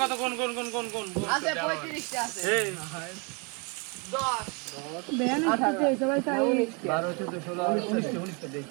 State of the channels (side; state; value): left; quieter; 32.9 dB